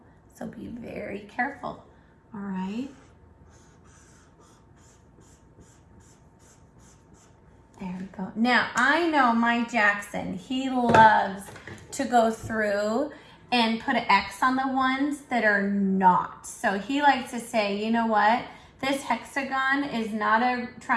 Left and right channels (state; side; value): identical; both; correlation 1.00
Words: So be very careful, all right? There we go. Now, I know my Jackson, he loves to go through and put an X on the ones that are not. So he likes to say, you know what? This hexagon is not a